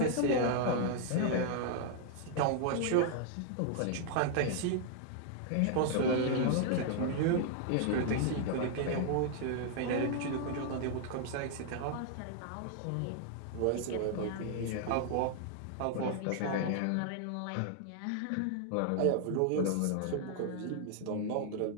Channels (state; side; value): different; both; correlation 0.00